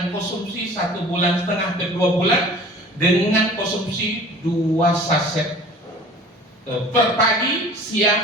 konsumsi 1,5 bulan ke 2 bulan, dengan konsumsi 2 saset per pagi,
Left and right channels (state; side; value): normal; both; correlation 0.45